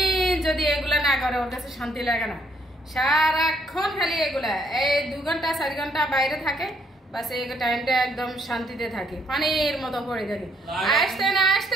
যদি এগুলা না করে ওর কাছে শান্তি লাগে না। সারাক্ষণ খালি এগুলা, এই 2 ঘন্টা 4 ঘন্টা বাইরে থাকে, বাস এই টাইমটা একদম শান্তিতে থাকে, পানির মতো পড়ে থাকে। আসতে না আসতে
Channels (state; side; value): normal; both; correlation 0.68